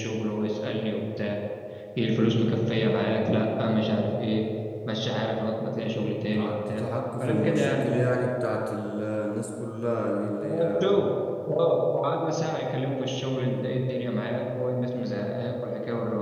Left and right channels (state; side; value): identical; both; correlation 1.00